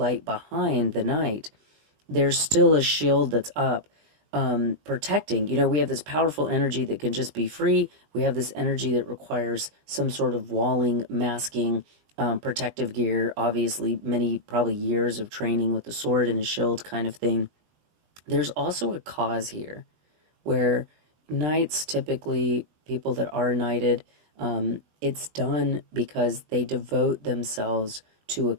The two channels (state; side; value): late; left; 20 ms